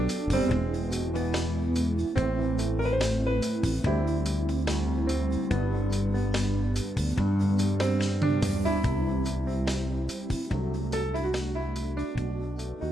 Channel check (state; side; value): normal; both; correlation 0.83